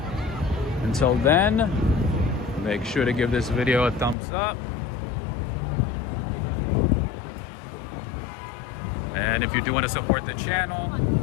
Until then, make sure to give this video a thumbs up. And if you do want to support the channel,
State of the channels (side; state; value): right; drops out; at 4.2 s